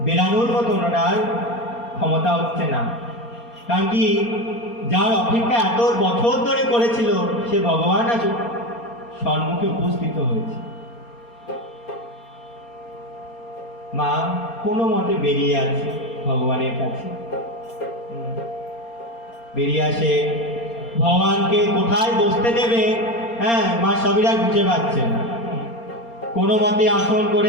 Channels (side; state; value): right; late; 4.3 ms